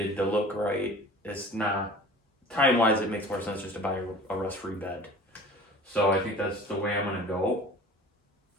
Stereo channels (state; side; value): normal; both; correlation 0.43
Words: to look right. It's not time-wise. It makes more sense just to buy a rust-free bed. So I think that's the way I'm gonna go.